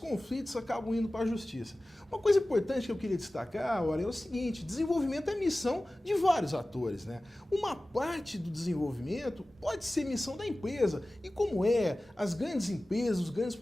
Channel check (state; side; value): normal; both; correlation 0.97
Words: acabam indo para a justiça. Uma coisa importante que eu queria destacar, ora, é o seguinte: desenvolvimento é missão de vários atores, né? Uma parte do desenvolvimento pode ser missão da empresa, e como as grandes empresas, os grandes